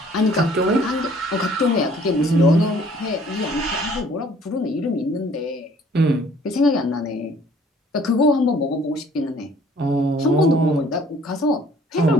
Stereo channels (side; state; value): both; normal; correlation 0.57